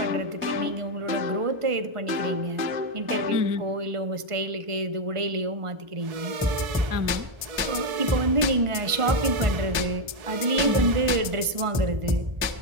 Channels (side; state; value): left; late; 1.4 ms